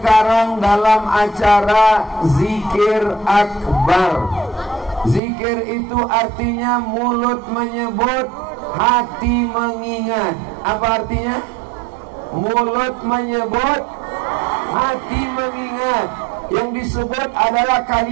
dalam acara zikir akbar. Zikir itu artinya mulut menyebut, hati mengingat. Apa artinya? Mulut menyebut, hati mengingat. Yang disebut adalah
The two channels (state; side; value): drops out; left; at 5.2 s